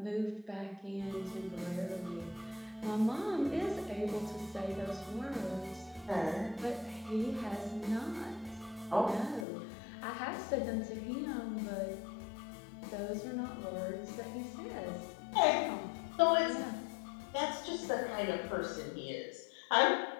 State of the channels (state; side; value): drops out; right; at 9.5 s